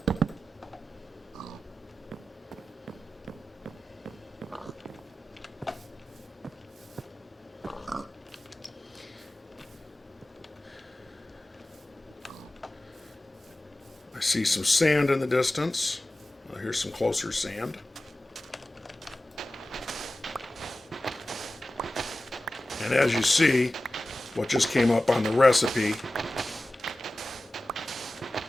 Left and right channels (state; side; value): normal; both; correlation 0.96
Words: I see some sand in the distance. Here's some closer sand. And as you see, what just came up on the recipe